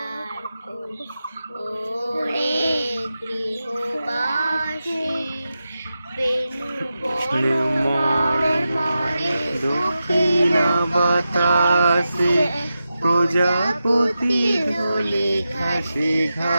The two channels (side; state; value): both; inverted; correlation -0.91